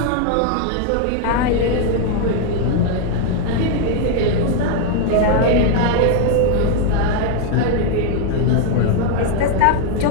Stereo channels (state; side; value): different; both; correlation 0.00